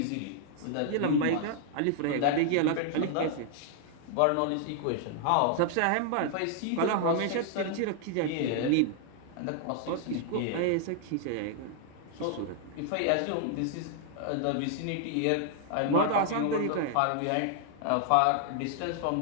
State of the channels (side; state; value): both; different; correlation 0.00